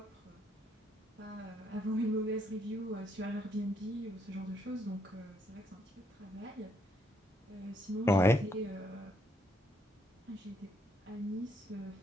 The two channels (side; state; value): both; normal; correlation 0.73